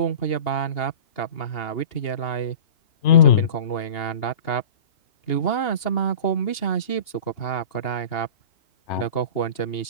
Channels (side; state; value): right; late; 2.8 ms